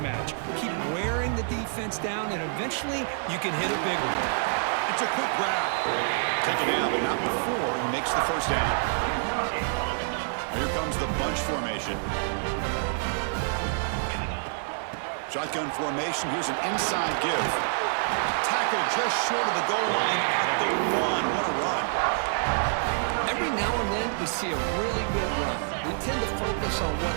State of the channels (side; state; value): left; silent; 60 dB below the other